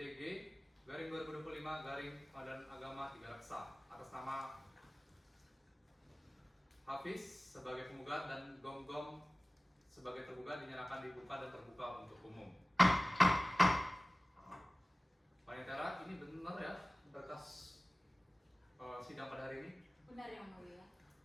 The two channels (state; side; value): normal; both; correlation 0.97